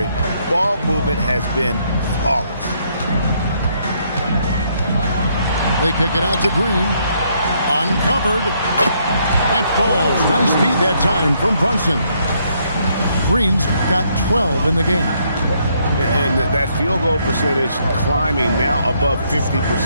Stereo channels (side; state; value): both; inverted; correlation -0.71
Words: Ball movement has been flawless. They kick it out to Green. Uncovered. That falls. Nice speed that time from Brunson. Green's got 12 in the game. And that field goal percentage climbing now above